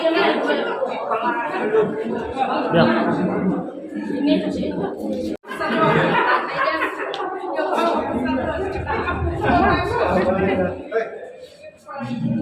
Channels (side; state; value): both; identical; correlation 1.00